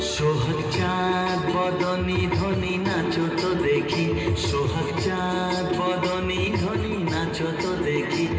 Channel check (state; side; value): identical; both; correlation 1.00